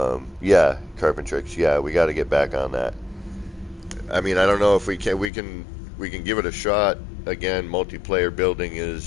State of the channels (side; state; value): right; drops out; at 5.3 s